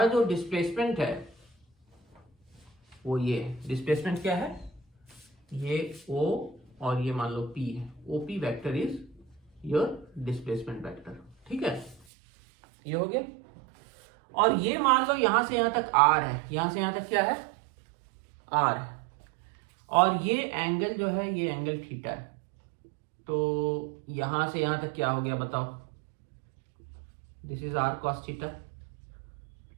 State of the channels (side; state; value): left; drops out; at 12.0 s